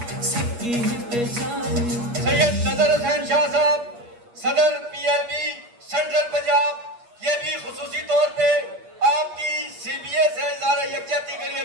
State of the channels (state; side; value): late; left; 8.4 ms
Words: सैयद नजर हुसैन शाह साहब, सदर PLB सेंट्रल पंजाब, ये भी खुसूसी तौर पे आपकी CBA से इज़हारे यकजहती के लिए